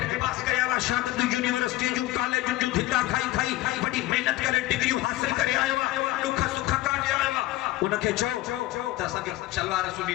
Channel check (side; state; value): right; quieter; 17.1 dB